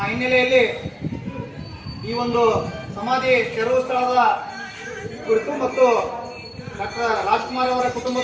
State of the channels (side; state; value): both; identical; correlation 1.00